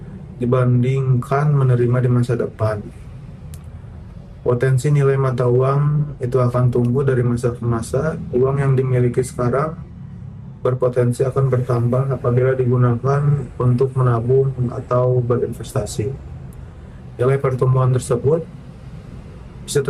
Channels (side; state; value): both; identical; correlation 1.00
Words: dibandingkan menerima di masa depan. Potensi nilai mata uang itu akan tumbuh dari masa ke masa. Uang yang dimiliki sekarang berpotensi akan bertambah apabila digunakan untuk menabung atau berinvestasi. Nilai pertumbuhan tersebut bisa